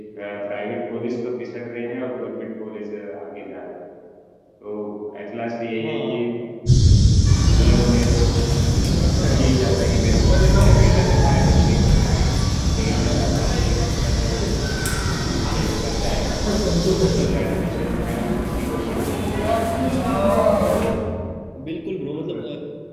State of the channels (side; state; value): both; identical; correlation 1.00